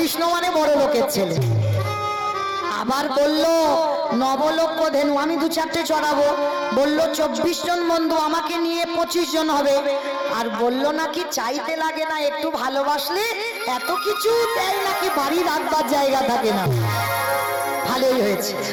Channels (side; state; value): both; identical; correlation 1.00